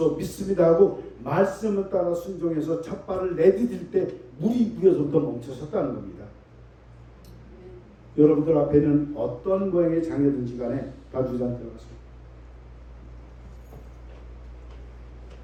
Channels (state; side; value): identical; both; correlation 1.00